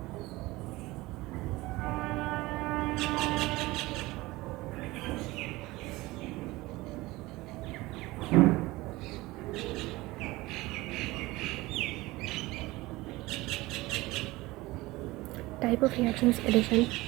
Type of reactions addition.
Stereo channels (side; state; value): left; quieter; 20.1 dB